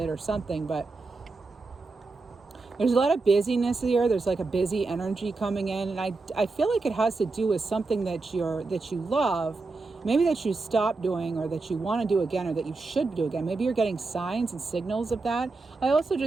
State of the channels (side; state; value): left; quieter; 3.7 dB